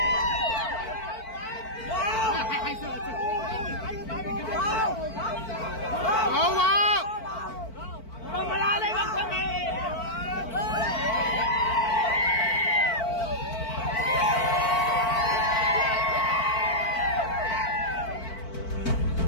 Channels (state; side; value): late; right; 4.5 ms